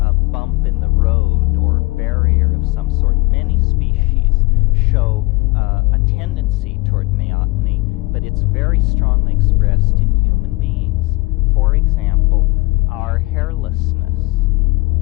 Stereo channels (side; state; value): right; quieter; 23.9 dB